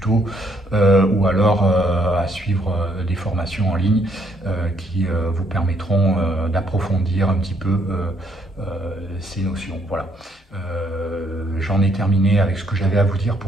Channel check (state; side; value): normal; both; correlation 0.70